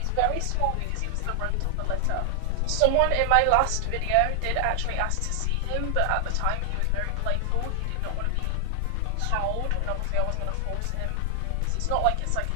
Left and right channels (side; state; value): both; different; correlation 0.00